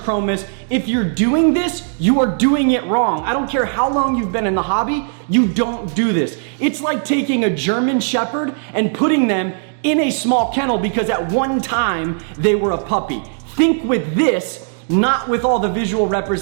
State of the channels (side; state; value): left; silent; digital silence